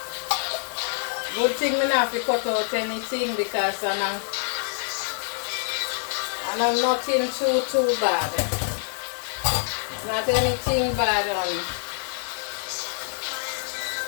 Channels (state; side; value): silent; right; digital silence